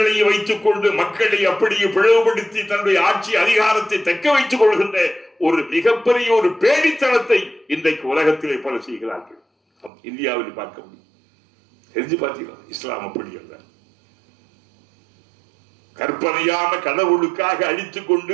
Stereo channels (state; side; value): drops out; left; at 9.9 s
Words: வைத்துக் கொண்டு மக்களை அப்படியே பிளவுபடுத்தி தன்னுடைய ஆட்சி அதிகாரத்தை தக்க வைத்துக் கொள்கின்ற ஒரு மிகப்பெரிய ஒரு பேடித்தனத்தை இன்றைக்கு உலகத்திலே பல செய்கிறார்கள். இந்தியாவில் பார்க்க முடியும். தெரிஞ்சு பார்த்தீங்களா? இஸ்லாம் அப்படி அல்ல. கற்பனையான கடவுளுக்காக அழித்துக் கொண்டு